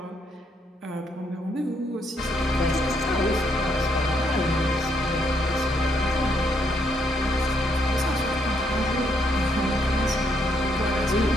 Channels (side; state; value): both; normal; correlation 0.74